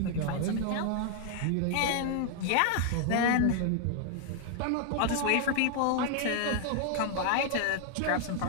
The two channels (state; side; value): different; both; correlation 0.00